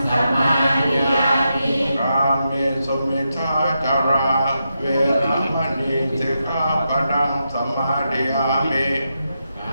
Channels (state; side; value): inverted; both; correlation -0.86